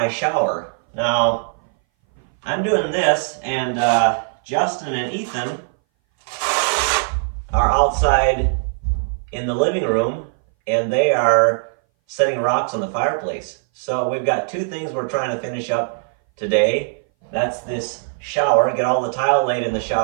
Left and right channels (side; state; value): left; silent; 60 dB below the other